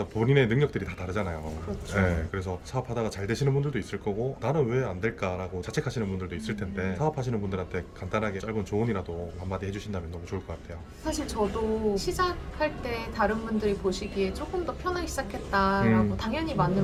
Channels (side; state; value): both; identical; correlation 1.00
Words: 본인의 능력들이 다 다르잖아요. 그렇죠. 네, 그래서 사업하다가 잘 되시는 분들도 있을 거고 나는 왜 안 될까라고 자책하시는 분들도 있을 텐데 사업하시는 분들한테 간단하게 짧은 조언이라도 한마디 해주신다면 너무 좋을 것 같아요. 사실 저도 시작할 때 다른 분들이 보시기에 조금 더 편하게 시작했다라고 당연히